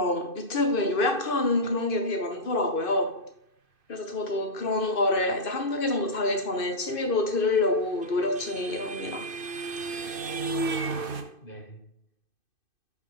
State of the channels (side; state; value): right; late; 2.6 ms